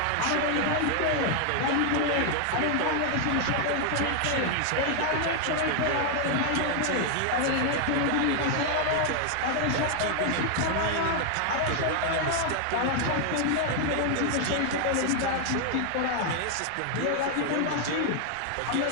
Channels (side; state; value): both; different; correlation 0.00